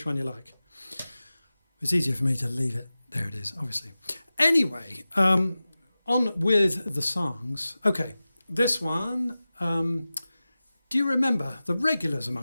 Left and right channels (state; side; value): inverted; both; correlation -0.96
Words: one you like. It's easier for me to leave it. There it is, obviously. Anyway, on with the songs. Okay, this one. Do you remember? The regulars